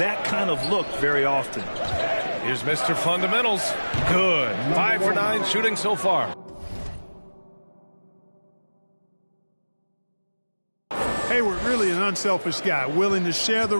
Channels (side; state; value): both; inverted; correlation -1.00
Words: kind of look very often. Here's Mr. Fundamentals. Good. 5 for 9 shooting so far. Hayward, really an unselfish guy, willing to share the